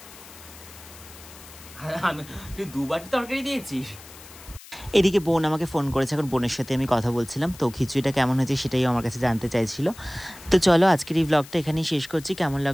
তুই 2 বাটি তরকারি দিয়েছিস। এদিকে বোন আমাকে ফোন করেছে, এখন বোনের সাথে আমি কথা বলছিলাম। তো খিচুড়িটা কেমন হয়েছে সেটাই আমার কাছে জানতে চাইছিল। তো চলো আজকের এই ব্লগটা এখানেই শেষ করছি। কেমন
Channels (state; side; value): noise; left; hiss, 19 dB below the sound